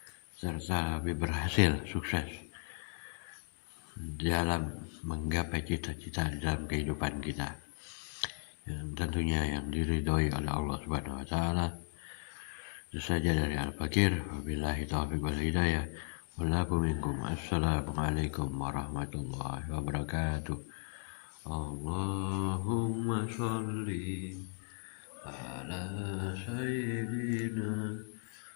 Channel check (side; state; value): right; silent; digital silence